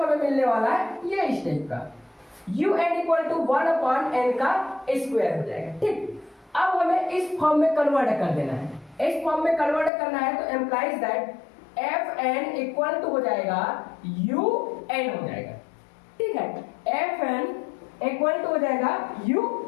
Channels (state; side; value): drops out; right; at 9.9 s